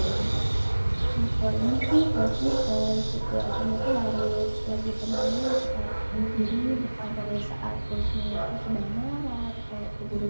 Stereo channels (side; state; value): both; inverted; correlation -1.00